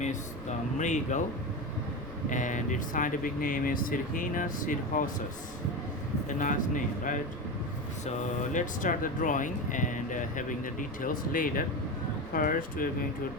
is the Mrigal, and its scientific name is Sirhina sirhosus. A nice name, right? So let's start the drawing and having the details later. First, we're going to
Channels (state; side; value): noise; right; rumble, 18 dB below the sound